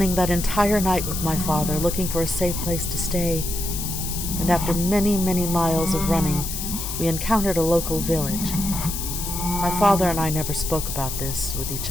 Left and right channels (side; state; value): left; noise; hiss, 5 dB below the sound